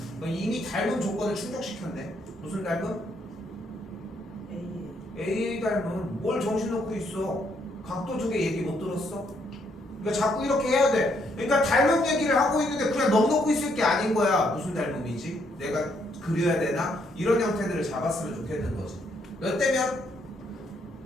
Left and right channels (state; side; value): normal; both; correlation 0.72